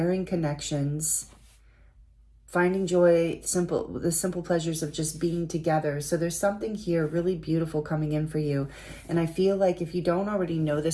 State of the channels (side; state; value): both; identical; correlation 1.00